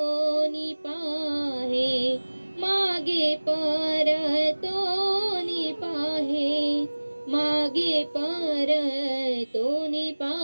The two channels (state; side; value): inverted; both; correlation -1.00